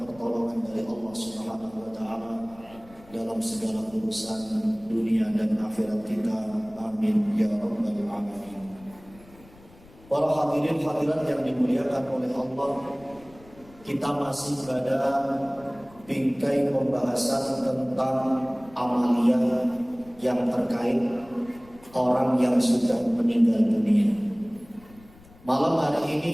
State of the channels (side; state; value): left; noise; rumble, 24 dB below the sound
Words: dari Allah Subhanahu wa taala dalam segala urusan dunia dan akhirat kita. Amin ya rabbal alamin. Para hadirin hadirat yang dimuliakan oleh Allah, kita masih pada bingkai pembahasan tentang amaliyah yang terkait orang yang sudah meninggal dunia. Malam hari